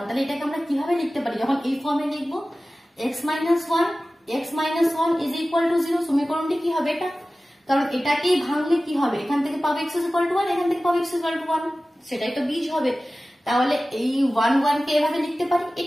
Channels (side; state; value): both; normal; correlation 0.96